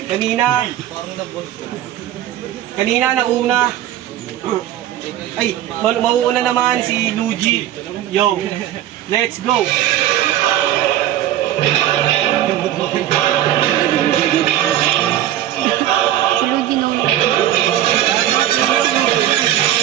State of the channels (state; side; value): quieter; left; 12.4 dB